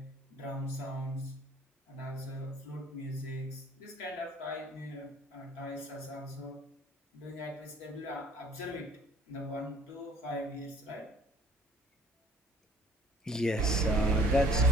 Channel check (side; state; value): both; normal; correlation 0.55